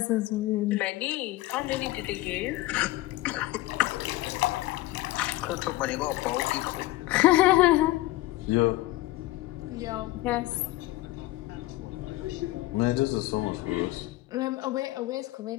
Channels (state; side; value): quieter; right; 17.8 dB